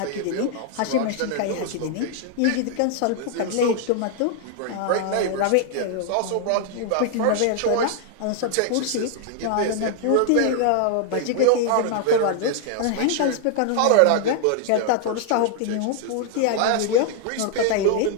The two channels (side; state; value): both; different; correlation 0.00